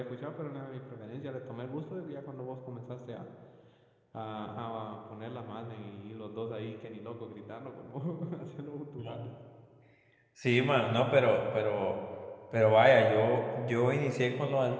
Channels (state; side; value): identical; both; correlation 1.00